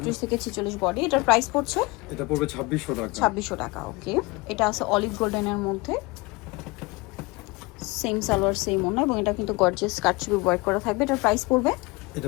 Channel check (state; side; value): quieter; right; 24.8 dB